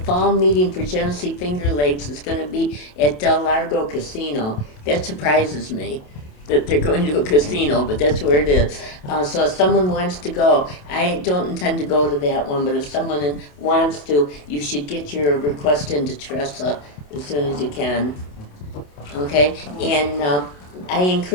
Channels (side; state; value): right; late; 27 ms